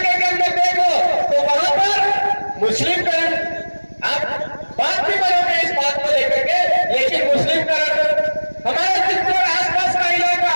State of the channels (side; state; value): both; inverted; correlation -1.00